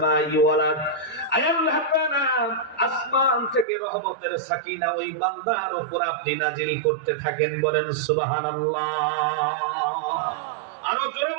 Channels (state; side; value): drops out; left; at 3.7 s